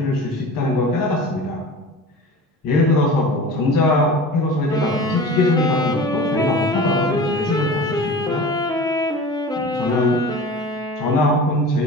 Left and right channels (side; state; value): both; normal; correlation 0.37